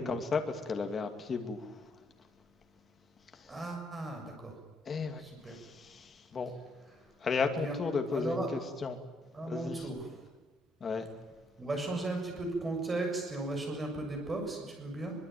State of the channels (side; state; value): both; normal; correlation 0.72